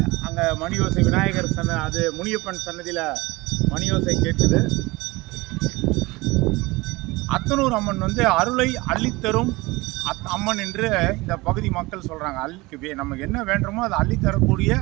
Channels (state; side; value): quieter; left; 22.1 dB